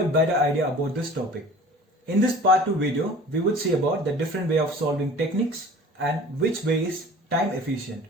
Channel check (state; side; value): normal; both; correlation 0.44